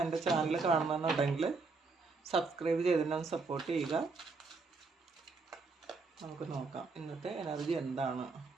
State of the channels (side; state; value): left; quieter; 4.2 dB